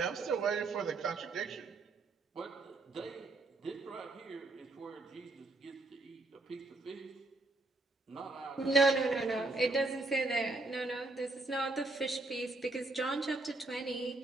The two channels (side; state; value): left; quieter; 3.1 dB